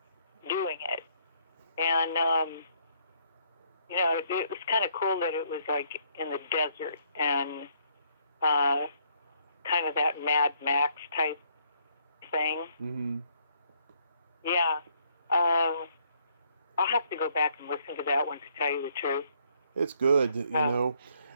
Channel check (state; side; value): inverted; both; correlation -0.68